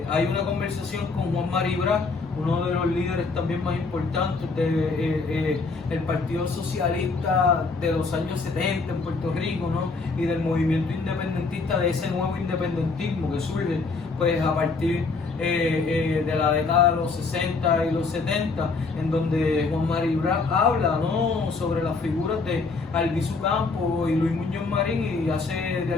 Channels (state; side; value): quieter; right; 4.2 dB